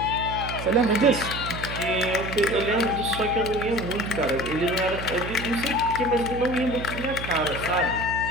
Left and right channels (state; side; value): noise; right; hum, 8 dB below the sound